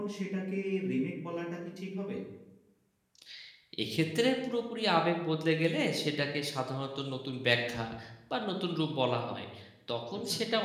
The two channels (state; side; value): identical; both; correlation 1.00